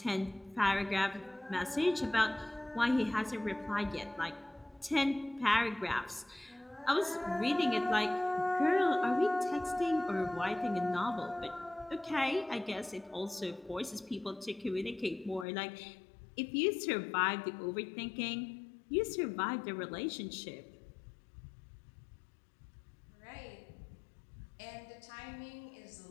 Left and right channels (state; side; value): drops out; right; at 15.5 s